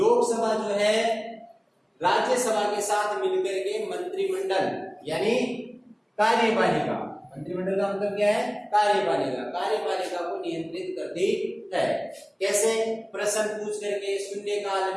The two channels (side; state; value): both; identical; correlation 1.00